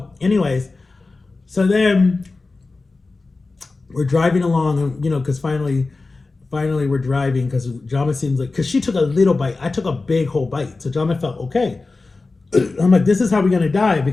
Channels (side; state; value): right; quieter; 3.6 dB